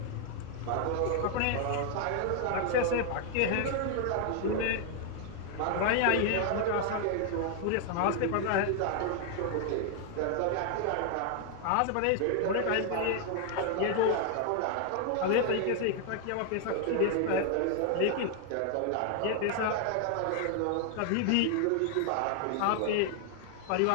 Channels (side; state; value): both; different; correlation 0.00